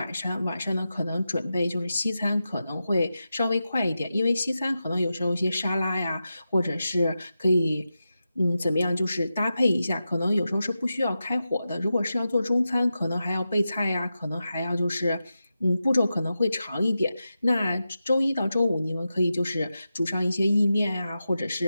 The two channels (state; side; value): inverted; both; correlation -0.91